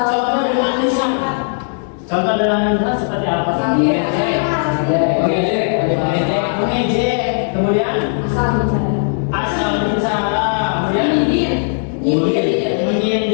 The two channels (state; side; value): silent; right; digital silence